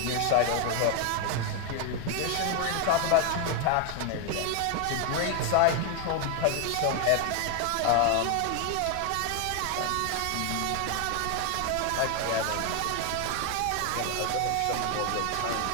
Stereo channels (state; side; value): different; both; correlation 0.01